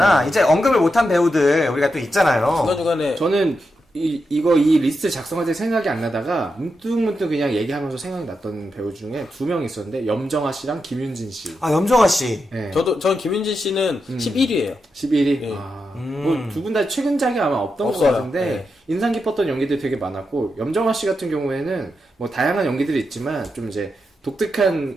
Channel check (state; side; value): normal; both; correlation 0.86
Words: 이제 언급을 못한 배우들 우리가 또 있잖아요. 중간중간에 저는 이 리스트 작성할 때 생각이 안 나다가 문득문득 그냥 얘기하면서 생각이 났던 배우 중에 2명 있었는데 염정아 씨랑 김윤진 씨. 아, 염정아 씨. 네. 저는 김윤진 씨는 11위예요. 11위. 네. 뭐2분 다 최근작이 아마 없던 없어요. 것 같은데 네. 인상 깊었던 연기들이 되게 많았고 염정아 씨 같은 경우에는 뭐 다양한 연기들이 있지만 좀 이제